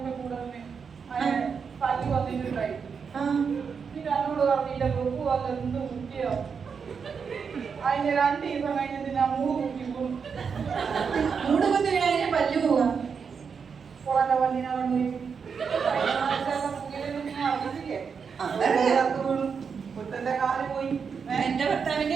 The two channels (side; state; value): left; quieter; 6.1 dB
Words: അതിന് 2 ദിവസം കഴിഞ്ഞിട്ട് ഞാൻ 3 കുട്ടി പോകും. പല്ലു പോവാ പുറത്തെ പല്ലിനെ മുത്തന്റെ കാല് പോയി. എന്റെ